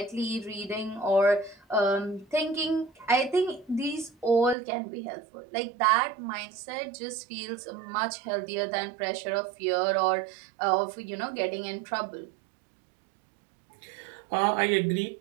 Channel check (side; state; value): left; drops out; at 4.5 s